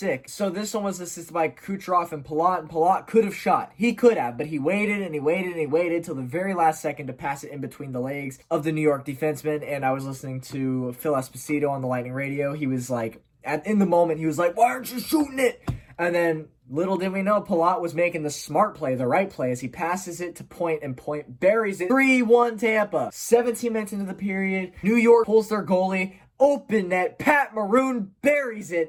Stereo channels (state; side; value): identical; both; correlation 1.00